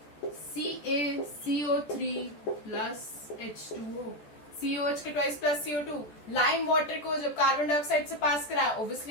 CaCO3 plus H2O. COH के twice plus CO2. Lime water को जब कार्बन डाइऑक्साइड से पास कराया, ऑब्वियसली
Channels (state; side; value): late; right; 14 ms